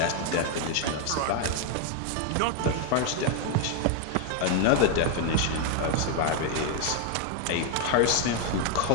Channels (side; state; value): both; different; correlation 0.01